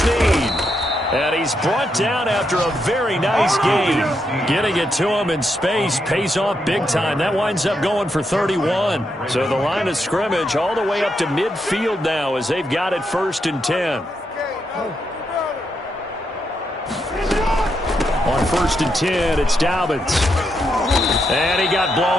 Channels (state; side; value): normal; both; correlation 0.81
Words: And he's brought down after a very nice game. Getting it to him in space pays off big time. That winds up going for 31. So the line of scrimmage all the way up to midfield now as they've got it 1st and 10. On 1st and 10, it's Dobbins. And he got